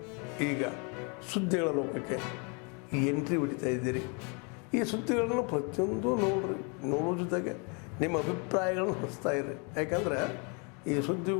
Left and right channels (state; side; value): quieter; right; 34.1 dB